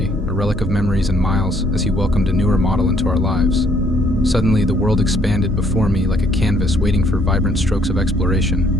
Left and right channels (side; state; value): both; normal; correlation 0.65